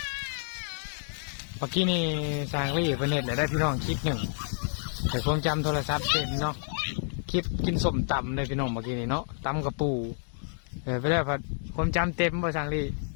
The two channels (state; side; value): silent; right; digital silence